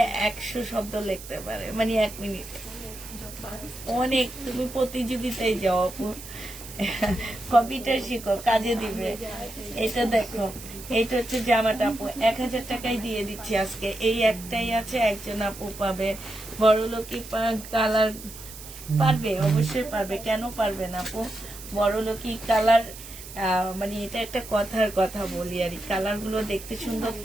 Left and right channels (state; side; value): noise; right; hiss, 14 dB below the sound